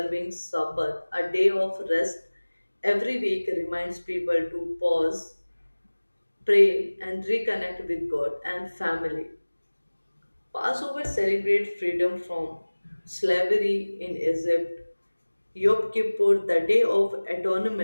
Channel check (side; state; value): both; inverted; correlation -1.00